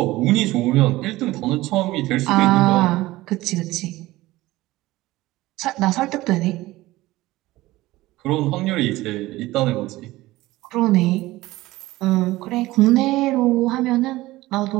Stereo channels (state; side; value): quieter; left; 18.1 dB